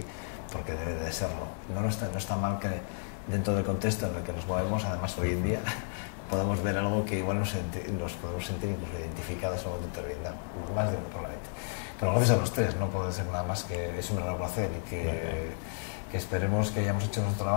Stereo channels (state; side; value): silent; right; digital silence